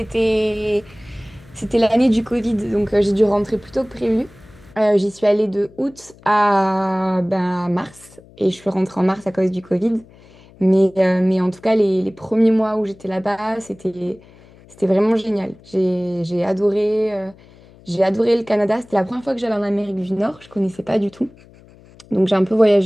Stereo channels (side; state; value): left; noise; hum, 25 dB below the sound